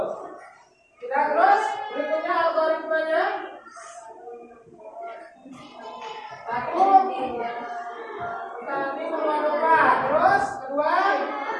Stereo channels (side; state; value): both; identical; correlation 1.00